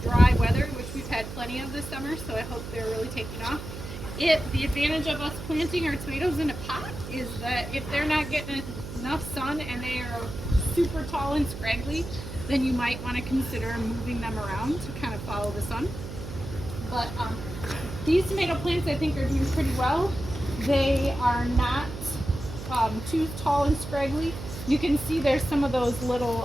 dry weather, which we've had plenty of this summer, so I hope they're really taking off. The advantage of us planting our tomatoes in a pot is that if they're not getting enough sun and they are super tall and scraggly, then you might want to consider moving them around to kind of follow the sun. But these tomato plants I think are doing pretty well. They are not too tall and scraggly. You can see there's some of those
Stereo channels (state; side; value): noise; right; hum, 9 dB below the sound